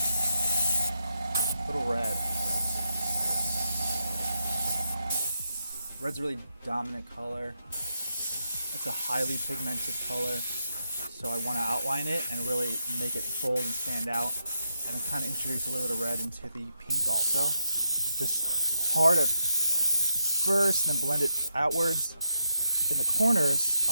Little red. Red's a really dominant color. It's a highly pigmented color, so I want to outline it and really make it bold and stand out, and then kind of introduce a little bit of red into the pink also. Just hard at first, and then blend it outwards. In the corners,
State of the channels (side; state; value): both; inverted; correlation -0.80